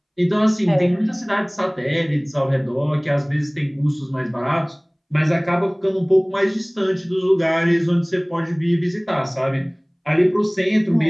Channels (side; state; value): both; identical; correlation 1.00